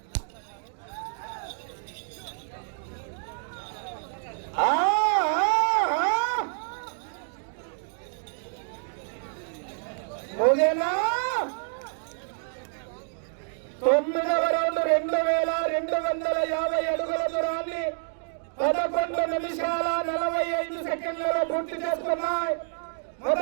ముగినా 9వ రౌండ్ 2250 అడుగుల దూరాన్ని 11 నిమిషాల 45 సెకండ్లలో పూర్తి చేసుకున్నాయి.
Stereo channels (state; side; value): silent; left; digital silence